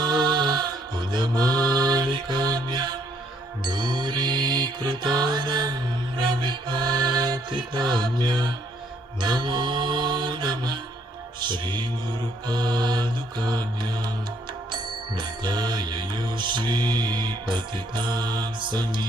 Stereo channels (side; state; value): both; normal; correlation 0.67